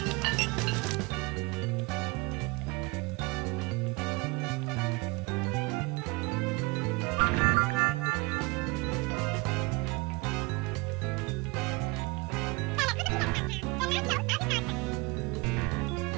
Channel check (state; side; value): quieter; left; 26.1 dB